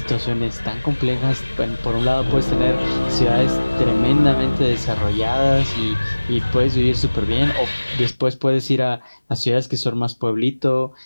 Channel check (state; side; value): inverted; both; correlation -1.00